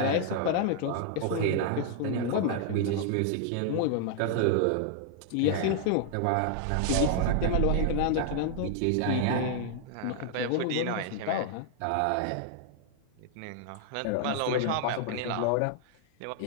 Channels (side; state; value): both; different; correlation -0.01